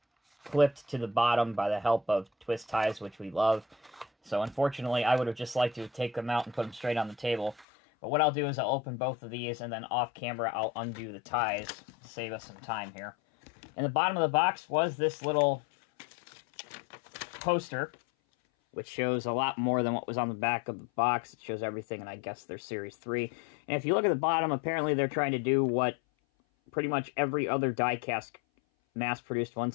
clipped to the bottom by the help of twist ties, which we love. So unfortunately, I would have just liked to take them out and put them straight on the table. But what I'll do is I'll open both of these, and then off camera, I'll undo the ties to save us some time here. In the bottom of the box was this little poster, which shows a lot more than what was on the back of the box. It shows everything, and I guess they're Series 3. And if you look at the bottom, apparently they're trying to do what pretty much every other die-cast mass-produced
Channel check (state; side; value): drops out; right; at 7.7 s